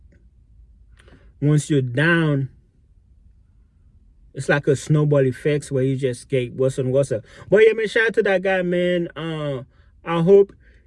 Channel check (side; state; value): both; identical; correlation 1.00